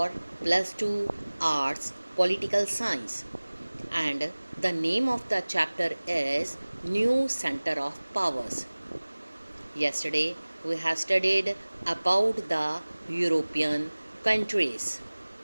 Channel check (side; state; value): both; inverted; correlation -1.00